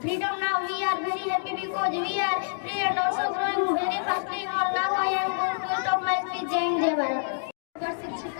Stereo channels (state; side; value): silent; right; digital silence